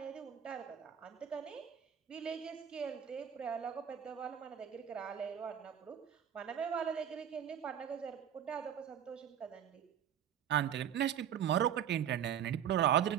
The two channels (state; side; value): quieter; left; 9.4 dB